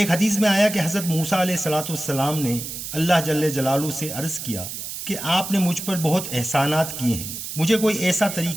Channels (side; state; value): right; noise; hiss, 7 dB below the sound